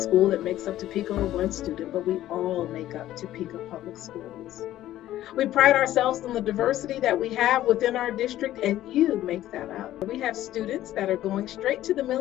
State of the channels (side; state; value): right; quieter; 13.7 dB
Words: that makes up Topeka or one student, but we all make up Topeka Public Schools. We pride ourselves on the diversity that we have within our district, and you make that up. We have students that are going straight to the